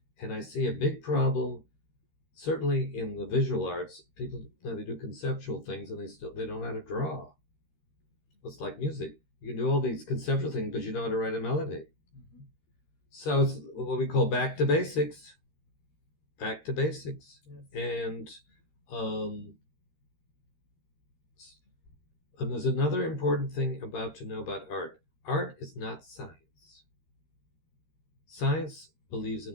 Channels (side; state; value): right; late; 13 ms